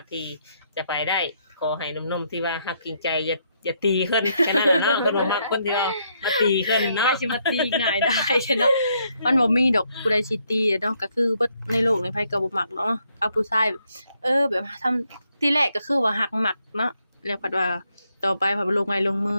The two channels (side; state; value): both; inverted; correlation -0.74